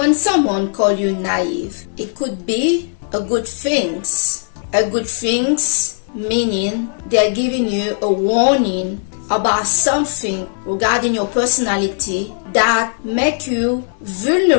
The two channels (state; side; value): silent; right; digital silence